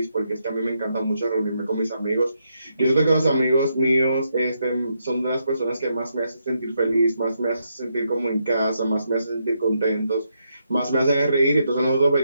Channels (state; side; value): inverted; both; correlation -0.80